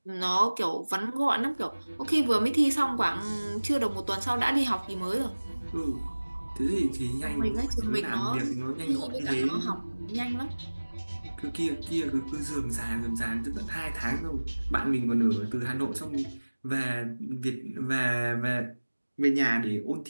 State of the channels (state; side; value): inverted; both; correlation -1.00